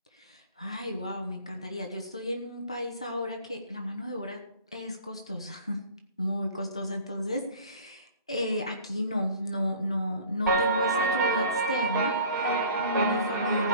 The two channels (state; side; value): inverted; both; correlation -0.46